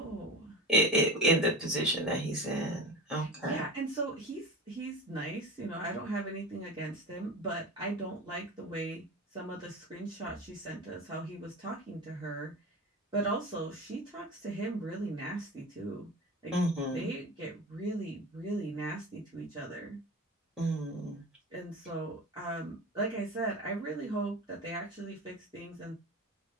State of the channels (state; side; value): normal; both; correlation 0.30